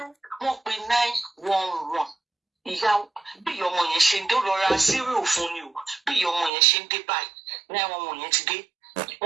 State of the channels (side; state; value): left; drops out; at 6.5 s